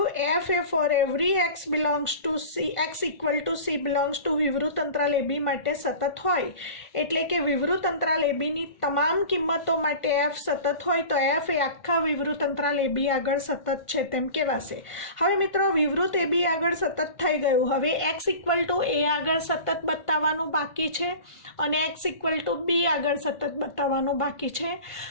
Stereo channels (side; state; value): right; late; 1.5 ms